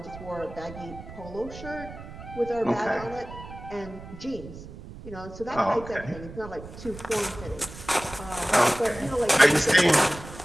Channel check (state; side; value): noise; right; rumble, 14 dB below the sound